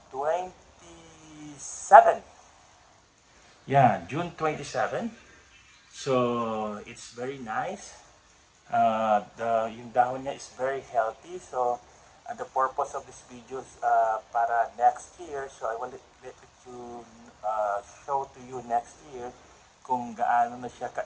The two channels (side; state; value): both; identical; correlation 1.00